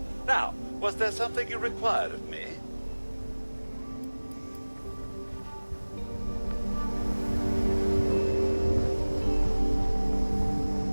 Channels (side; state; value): both; inverted; correlation -1.00